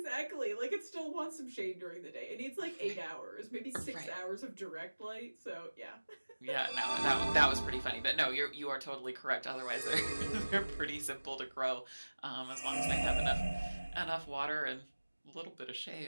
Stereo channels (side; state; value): both; inverted; correlation -1.00